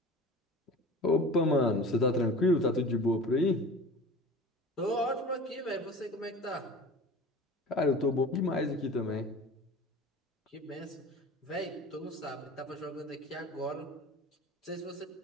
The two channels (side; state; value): both; normal; correlation 0.38